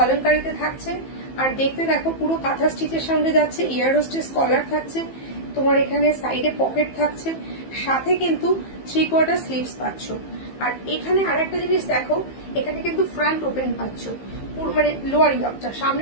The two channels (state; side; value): late; right; 15 ms